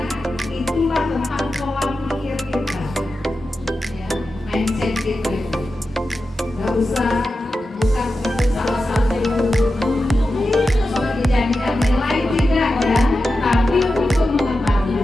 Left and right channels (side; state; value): both; normal; correlation 0.91